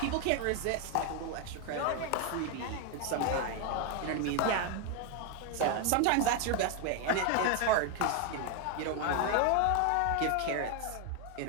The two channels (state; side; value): different; both; correlation 0.01